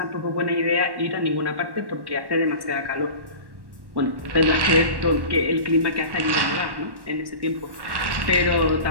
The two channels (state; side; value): late; left; 1.1 ms